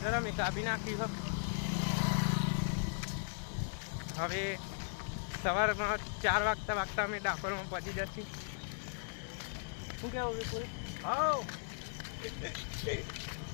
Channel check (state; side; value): silent; right; digital silence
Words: અમે કાપી નાખી છે. હવે સવારમાં 4 વાગતા અમે ડાકોરમાં પહોંચી જશું. શું કેવું વિપુલ?